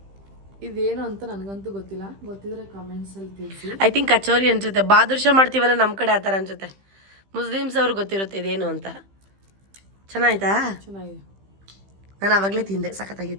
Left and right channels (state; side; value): late; left; 15 ms